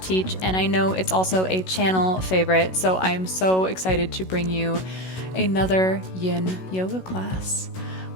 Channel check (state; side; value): late; right; 16 ms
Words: and I know it's also a channel favorite, so I am so excited to bring you another yin yoga class.